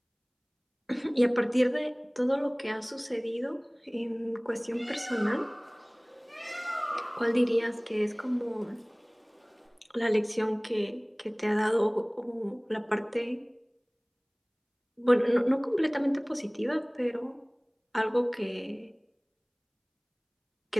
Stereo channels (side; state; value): both; identical; correlation 1.00